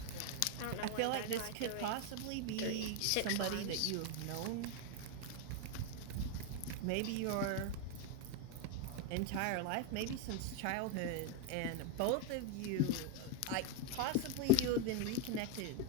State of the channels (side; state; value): both; different; correlation 0.02